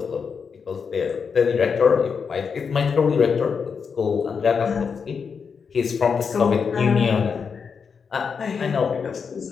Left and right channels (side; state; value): right; quieter; 6.0 dB